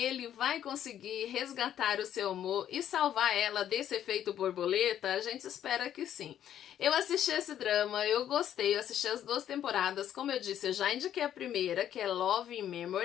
vai conseguir resgatar o seu amor e salvar ela desse efeito borboleta? A gente espera que sim. Eu assisti esse drama, eu gostei, eu assisti as 2 temporadas, como eu disse, eu já indiquei a primeira, que é Love in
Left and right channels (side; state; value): right; quieter; 10.6 dB